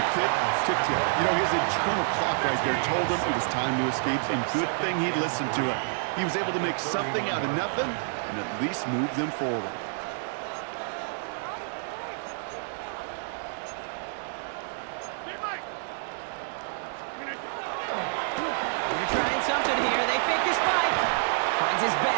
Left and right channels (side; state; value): left; silent; digital silence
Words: tick, tick, tick. You know, his internal clock right there told him it was time to escape, and good thing he listened to it. He was able to make something out of nothing and at least move them forward. They're trying something here. They fake the spike. Finds his